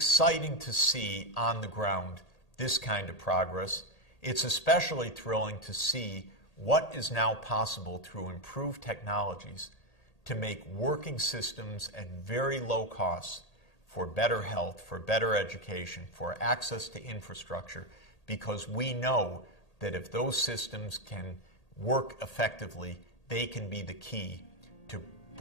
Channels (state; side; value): late; right; 1.8 ms